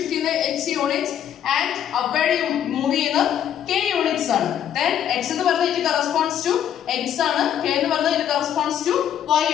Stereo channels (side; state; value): right; quieter; 9.9 dB